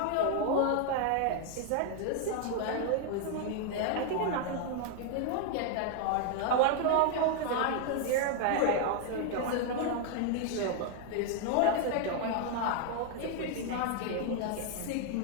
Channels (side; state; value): both; different; correlation 0.00